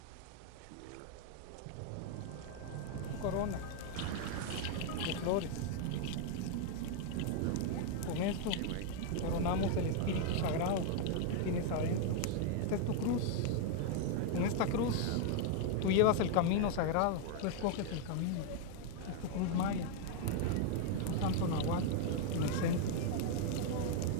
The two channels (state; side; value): different; both; correlation 0.00